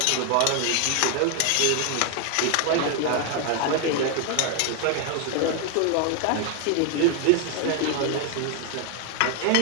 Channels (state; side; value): different; both; correlation 0.01